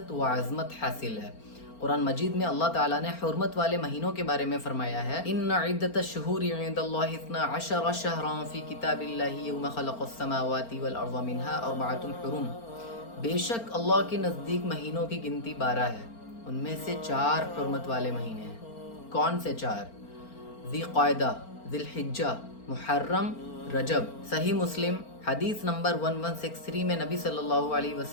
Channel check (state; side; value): late; right; 4.4 ms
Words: و عظمت حاصل ہے۔ قرآن مجید میں اللہ تعالیٰ نے حرمت والے مہینوں کے بارے میں فرمایا ہے ان عدت الشہور عند اللہ 12 شہرا فی کتاب اللہ یوم خلق السماوات والارض منها 4 حرم۔ بے شک اللہ کے نزدیک مہینوں کی گنتی 12 ہے، ان میں سے 4 حرمت والے مہینے ہیں۔ کون سے 4؟ ذی قعدہ، ذی الحجہ، محرم، رجب۔ صحیح مسلم حدیث نمبر 1163 میں نبی صلی اللہ علیہ